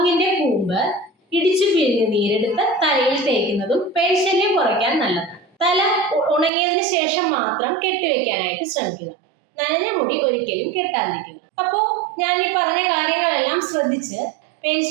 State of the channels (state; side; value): drops out; left; at 6.5 s